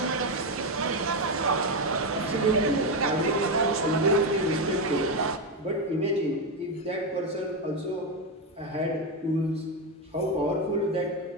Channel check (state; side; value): normal; both; correlation 0.09